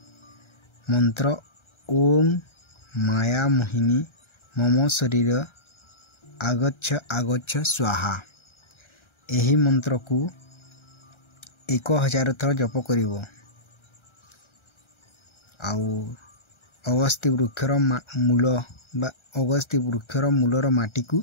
मंत्र ओम माया मोहिनी मम शरीर आगच्छ आगच्छ स्वाहा। एही मंत्र को 1000 थर जप करिवो। आउ अगस्ती वृक्षर मूल बा अगस्ती वृक्षर मूलर माटी को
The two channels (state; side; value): late; right; 1.3 ms